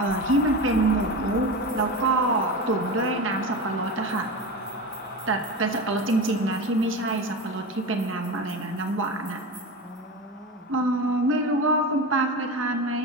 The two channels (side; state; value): both; normal; correlation 0.25